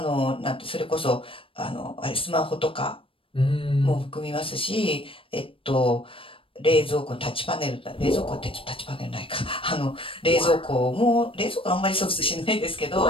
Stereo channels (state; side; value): late; right; 0.26 ms